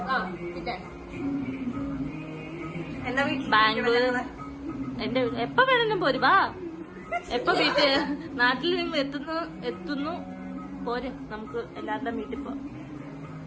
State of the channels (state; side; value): identical; both; correlation 1.00